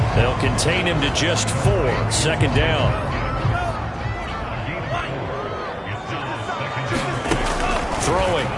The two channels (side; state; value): both; identical; correlation 1.00